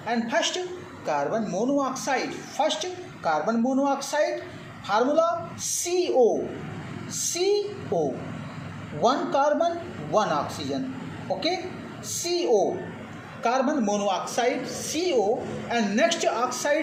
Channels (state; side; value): identical; both; correlation 1.00